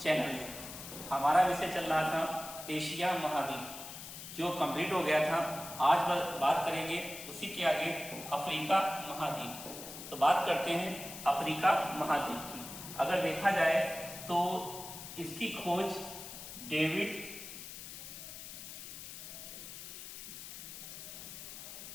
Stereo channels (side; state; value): left; noise; hiss, 11 dB below the sound